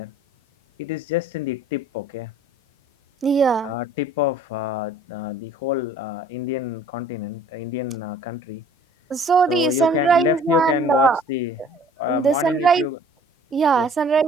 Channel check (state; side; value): normal; both; correlation 0.52